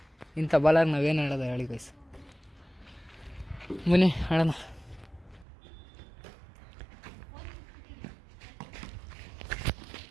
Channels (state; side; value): drops out; left; at 5.5 s